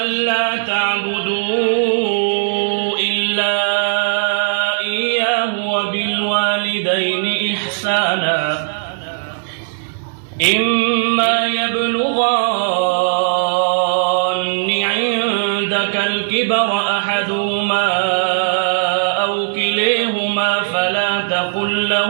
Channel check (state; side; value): silent; left; 68 dB below the other